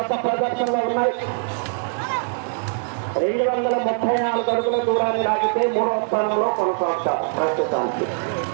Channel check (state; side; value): silent; left; 64 dB below the other